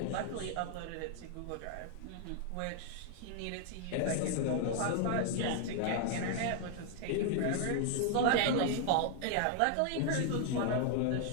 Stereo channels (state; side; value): different; both; correlation 0.00